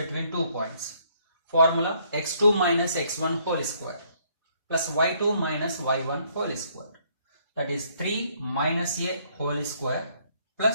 2 points. Formula x2 minus x1 whole square plus y2 minus y1 whole square. That is 3 minus a whole square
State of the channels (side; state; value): both; inverted; correlation -0.67